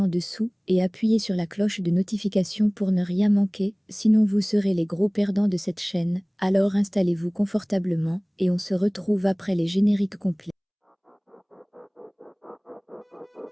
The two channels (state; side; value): identical; both; correlation 1.00